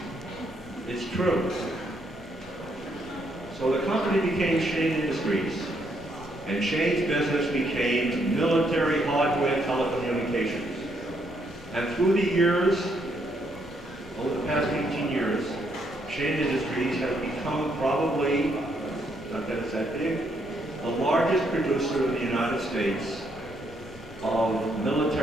It's true. So the company became Shane Industries, and Shane's business became military hardware telecommunications. And through the years, over the past 18 years, Shane Industries has become probably, not that it's that big, the largest producer in the United States of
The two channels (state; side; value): normal; both; correlation 0.74